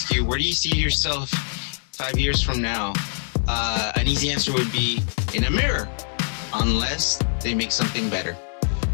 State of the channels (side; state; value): right; silent; digital silence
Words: you, where do you see yourself 5 years from now? An easy answer would be in a mirror, unless they make something better.